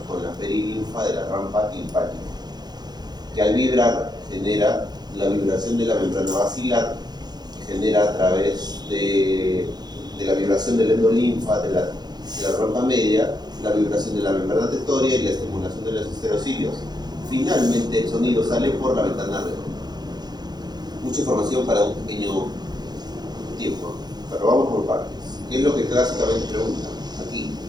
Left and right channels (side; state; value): left; late; 0.20 ms